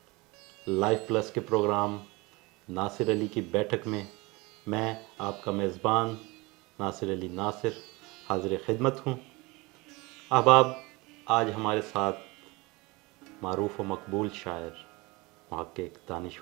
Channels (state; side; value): quieter; left; 24.2 dB